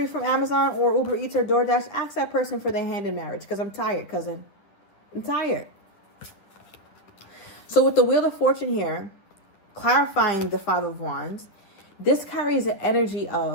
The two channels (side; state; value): right; late; 10 ms